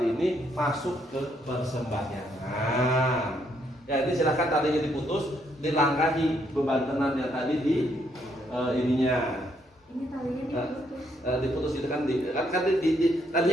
ini, masuk ke persembahyangan. Ya, ini silakan talinya diputus, dilangkahi beban tenan yang tadi di ininya. Ini talinya diputus. Diputus itu kan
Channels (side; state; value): both; normal; correlation 0.73